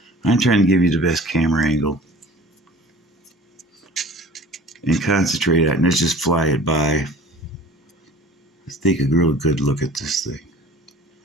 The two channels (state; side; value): normal; both; correlation 0.45